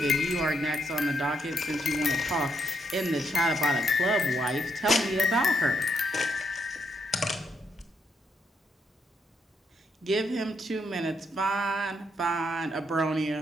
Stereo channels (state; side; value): normal; both; correlation 0.77